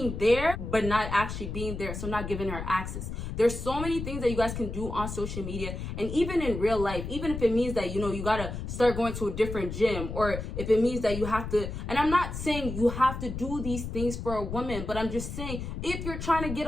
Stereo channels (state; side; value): noise; left; rumble, 6 dB below the sound